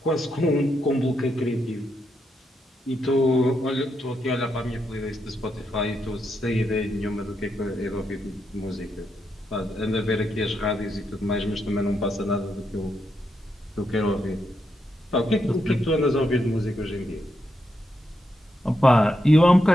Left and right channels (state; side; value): normal; both; correlation 0.82